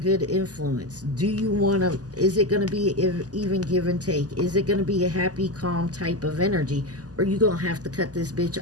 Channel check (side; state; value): left; late; 0.67 ms